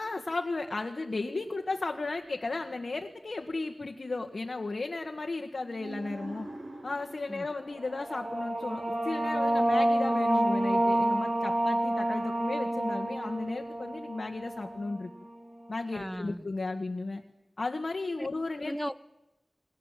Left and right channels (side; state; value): both; normal; correlation 0.96